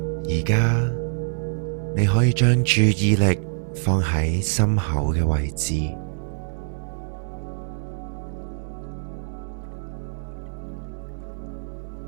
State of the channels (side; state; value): left; silent; digital silence